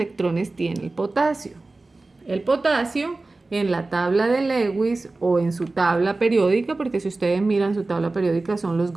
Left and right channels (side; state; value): left; quieter; 3.3 dB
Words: tiene el potasio? El potasio en la tabla de Lewis o en su tabla periódica, porque si ustedes miran su tabla periódica son los